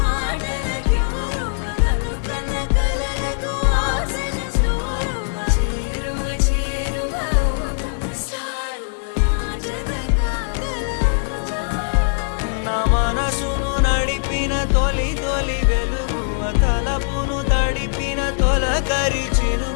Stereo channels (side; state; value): right; silent; 65 dB below the other